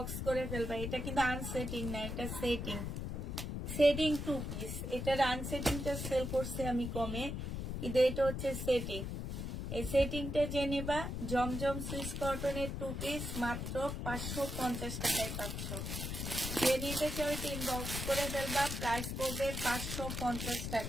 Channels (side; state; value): left; noise; rumble, 4 dB below the sound